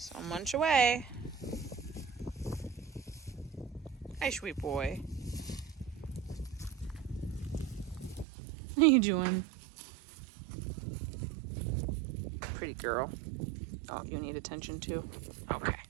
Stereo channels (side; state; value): left; drops out; at 8.2 s